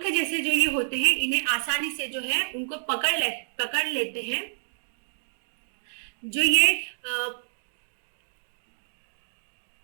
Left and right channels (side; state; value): left; silent; digital silence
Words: जैसे जो ये होते हैं इन्हें आसानी से जो है उनको पकड़ लेते हैं। जो ये